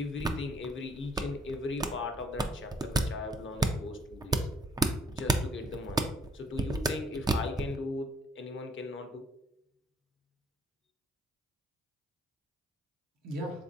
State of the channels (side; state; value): both; normal; correlation 0.64